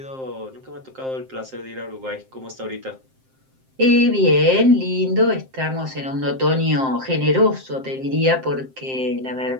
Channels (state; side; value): late; left; 7.6 ms